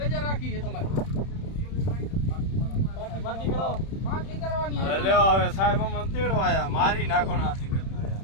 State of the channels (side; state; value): right; late; 31 ms